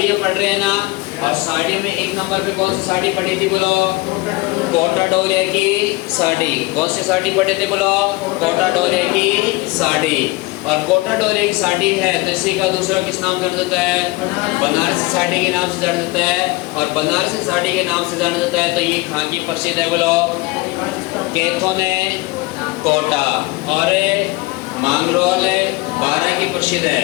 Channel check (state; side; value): quieter; right; 22.7 dB